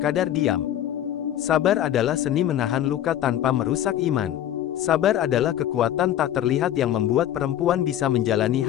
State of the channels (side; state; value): right; quieter; 11.6 dB